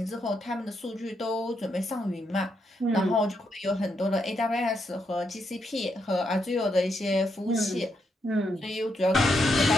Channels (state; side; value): normal; both; correlation 0.80